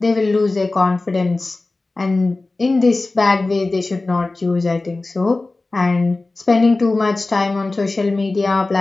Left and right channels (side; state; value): right; quieter; 3.3 dB